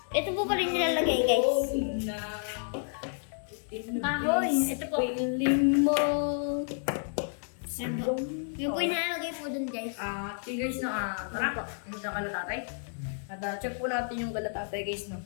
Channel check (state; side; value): silent; right; digital silence